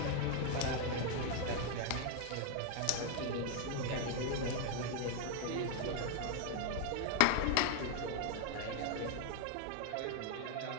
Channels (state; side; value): different; both; correlation 0.00